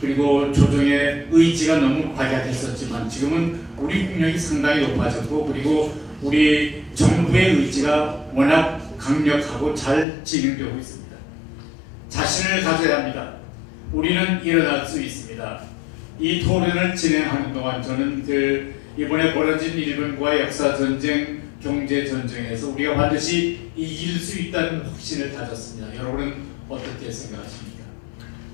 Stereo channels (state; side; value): drops out; right; at 10.1 s